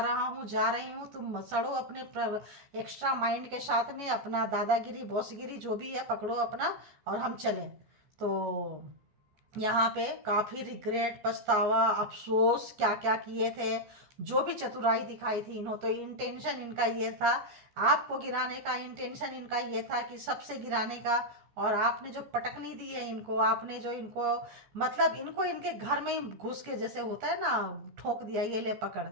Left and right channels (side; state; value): left; late; 14 ms